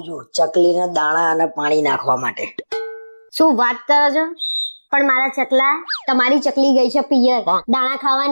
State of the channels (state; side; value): inverted; both; correlation -1.00